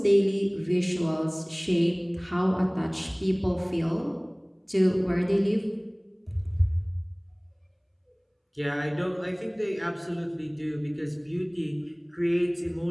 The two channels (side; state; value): both; identical; correlation 1.00